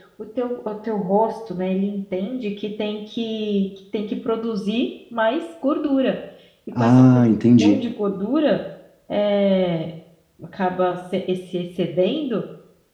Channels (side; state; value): both; identical; correlation 1.00